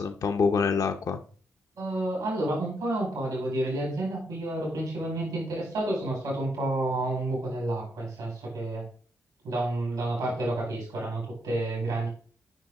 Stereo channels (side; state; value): both; normal; correlation 0.76